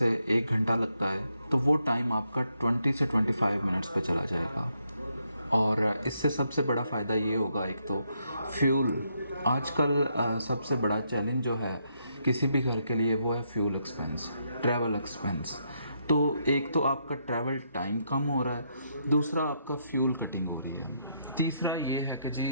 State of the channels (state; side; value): inverted; both; correlation -0.77